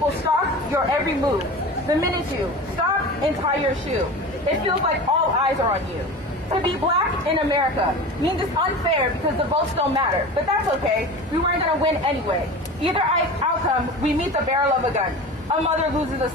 stalk your every move. The minute you stop and tie your shoe, it feels like all eyes are on you. To be black in America means it's unfair because the votes don't matter, but that's okay. We weren't going to win anyway. Either outcome, we meet the barrel of a gun. A mother loses a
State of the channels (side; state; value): both; normal; correlation 0.33